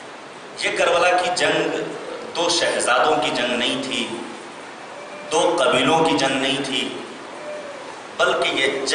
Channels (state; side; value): identical; both; correlation 1.00